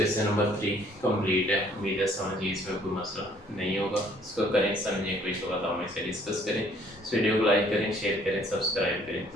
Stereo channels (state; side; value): normal; both; correlation 0.60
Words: नंबर 3 कंप्लीट है। उम्मीद है समझिए, इसमें कोई मसला नहीं होगा। इसको करें समझें, कोई तो बताओ, मैं से डिस्कस करें। इस वीडियो को लाइक करें, शेयर करें, सब्सक्राइब करें,